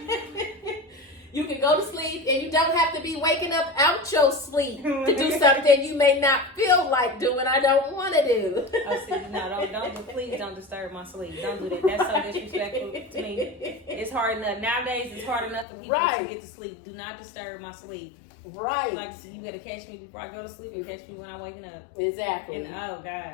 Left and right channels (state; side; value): drops out; right; at 15.7 s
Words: You can go to sleep and you don't have to be waking up out your sleep to do something you may not feel like doing. I don't want to do. Oh, see, no, please don't disturb my sleep. Don't do that. That's so disrespectful to me. It's hard enough. Nowadays, it's hard enough for people to get to sleep. Do not disturb my sleep. Right. Like, you got to catch me before I go to sleep and catch me when I'm waking up. Exactly. And, oh,